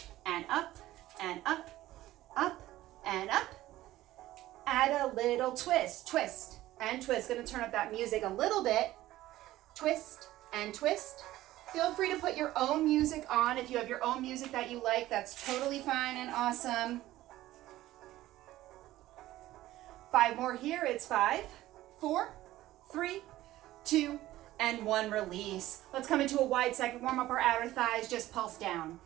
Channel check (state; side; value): quieter; left; 15.5 dB